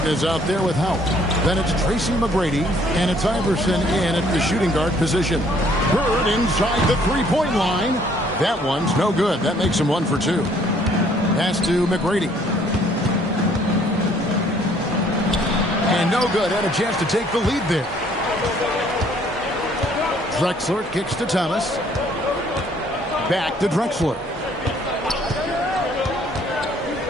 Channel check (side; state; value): both; normal; correlation 0.61